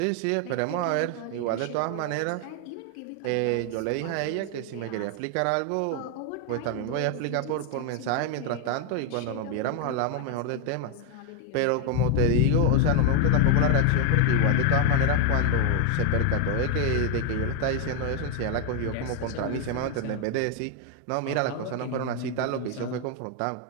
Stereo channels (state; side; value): different; both; correlation 0.01